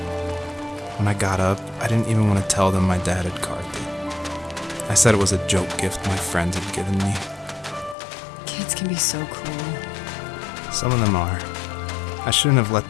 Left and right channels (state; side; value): drops out; right; at 8.0 s